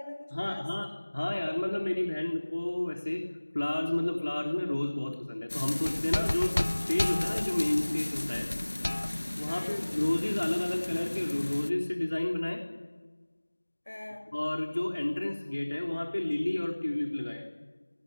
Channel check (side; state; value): both; inverted; correlation -1.00